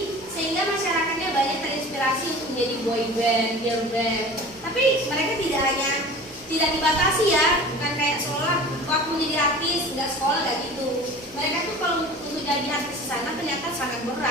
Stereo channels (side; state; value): right; noise; hum, 27 dB below the sound